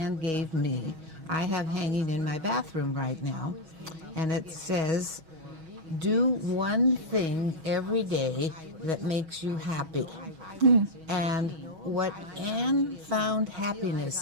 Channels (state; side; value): late; left; 6.2 ms